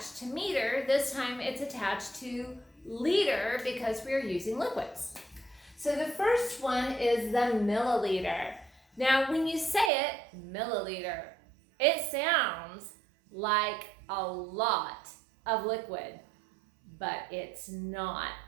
to meter, this time it's attached to liter because we are using liquids. So the first one is the milliliter. Now, when you say it, milliliter, it sounds like a lot of liquid, but it's not.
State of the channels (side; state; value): left; drops out; at 9.9 s